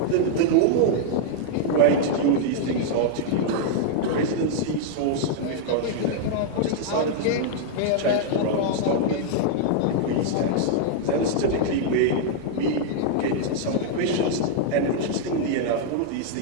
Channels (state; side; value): different; both; correlation -0.01